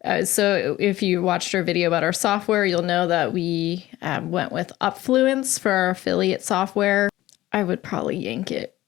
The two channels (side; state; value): right; quieter; 16.2 dB